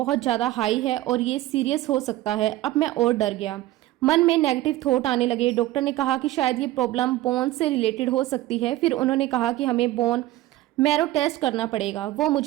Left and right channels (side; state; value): left; quieter; 16.1 dB